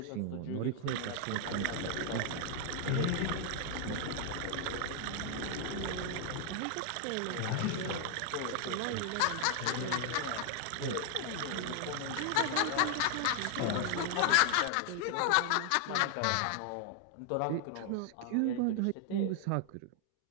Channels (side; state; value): both; different; correlation 0.00